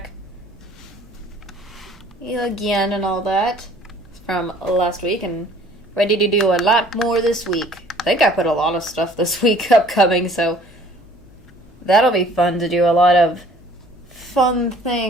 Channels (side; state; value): left; noise; hum, 25 dB below the sound